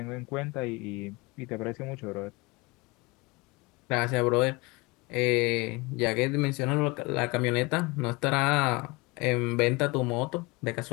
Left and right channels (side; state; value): right; quieter; 25.7 dB